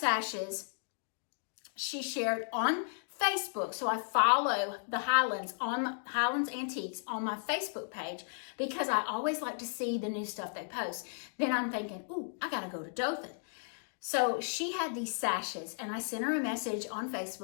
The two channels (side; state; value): right; silent; digital silence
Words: she shared on Facebook. So I follow the Highlands Antiques on my Facebook page, because I always like to see the new stuff they post. Then I'm thinking, ooh, I gotta go to Dothan. So she had these sashes, and I sent her a message on